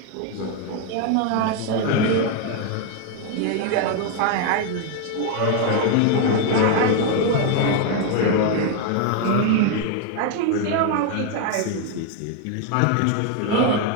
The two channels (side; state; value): both; different; correlation 0.01